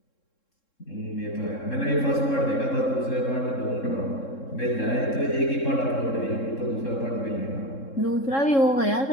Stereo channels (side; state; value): right; late; 3.7 ms